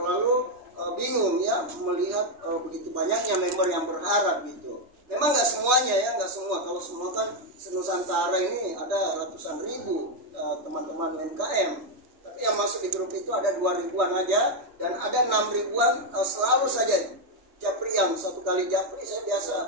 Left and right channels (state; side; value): late; left; 3.2 ms